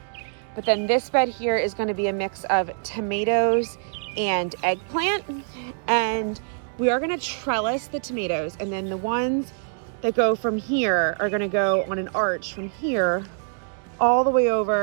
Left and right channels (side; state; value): left; silent; digital silence